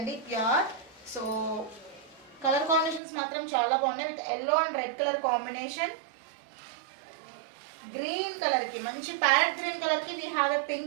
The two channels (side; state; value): left; drops out; at 3.0 s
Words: ప్యూర్. సో కలర్ కాంబినేషన్స్ మాత్రం చాలా బాగున్నాయి. With yellow and red colour combination. Green కలర్కి మంచి ప్యారెట్ గ్రీన్ కలర్కి we have a